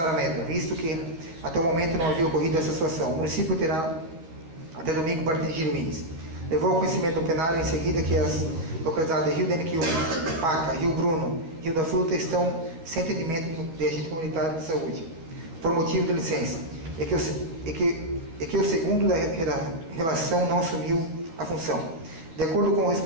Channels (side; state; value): left; late; 12 ms